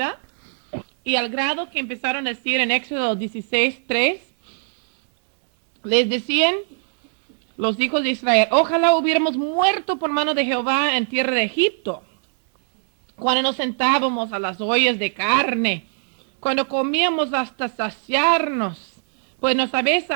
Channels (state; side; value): silent; left; 59 dB below the other